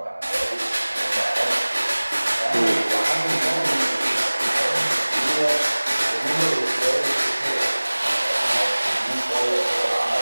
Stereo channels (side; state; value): both; inverted; correlation -1.00